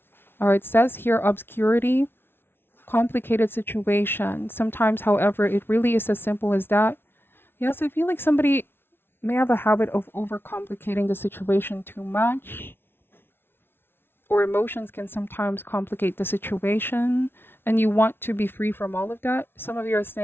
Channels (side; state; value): right; late; 0.11 ms